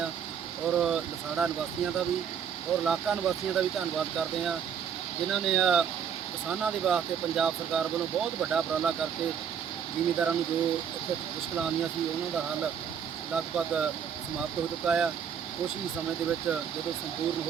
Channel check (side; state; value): left; quieter; 7.8 dB